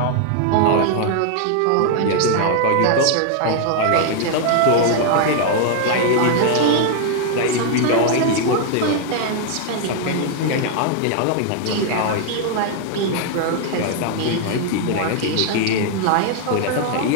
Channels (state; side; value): different; both; correlation 0.00